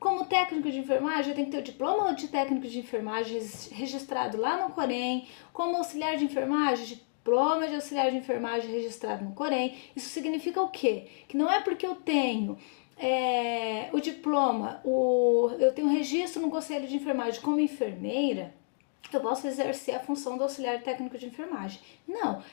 técnico de enfermagem, eu tenho que ter o diploma de técnico de enfermagem registrado lá no COREN, como auxiliar de enfermagem, diploma de auxiliar de enfermagem registrado no COREN. Isso significa o quê? Que não é porque eu tenho o diploma, eu tenho registro no Conselho de Enfermagem como enfermeira, eu posso exercer a função do auxiliar técnico de enfermagem. Não,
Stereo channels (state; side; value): silent; right; digital silence